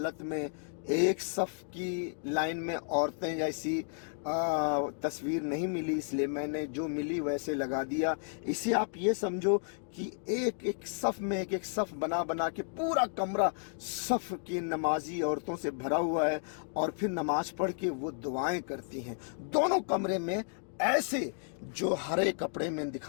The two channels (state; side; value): silent; right; digital silence